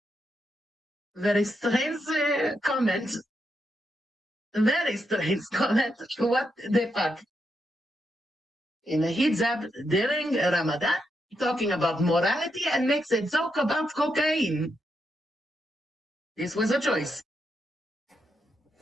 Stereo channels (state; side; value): normal; both; correlation 0.82